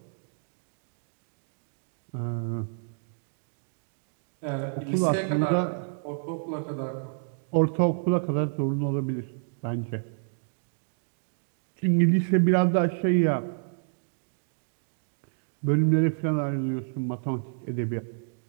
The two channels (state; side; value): silent; left; digital silence